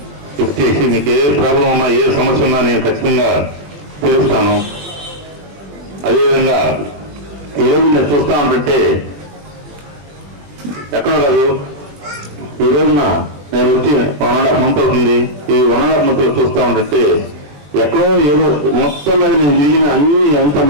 లిఫ్ట్ చేసి మీకు ఏ ప్రాబ్లం ఉన్నా, ఏ సమస్య ఉన్నా నేను ఖచ్చితంగా తీరుస్తాను. అదేవిధంగా ఈరోజు నేను చూస్తా ఉంటుంటే ఎక్కడ కాదు, ఈ రోజున నేను వచ్చి 1.5 month అవుతుంది. ఈ 1.5 month చూస్తా ఉంటుంటే ఎక్కడో ఏదో మొత్తం మీద నేను తిరిగిన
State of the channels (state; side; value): late; left; 20 ms